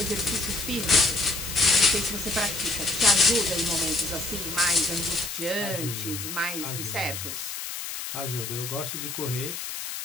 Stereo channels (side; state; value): left; noise; hiss, 6 dB below the sound